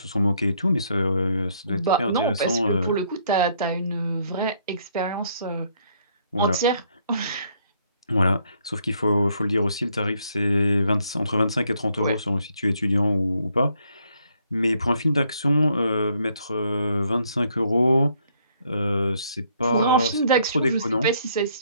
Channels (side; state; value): both; inverted; correlation -0.69